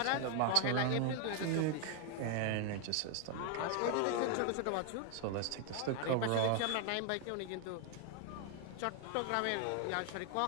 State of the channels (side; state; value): both; different; correlation 0.00